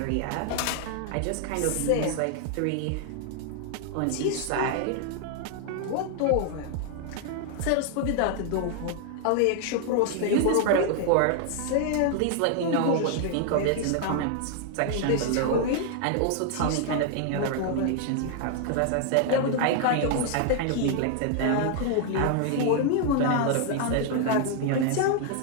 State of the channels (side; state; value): both; different; correlation 0.00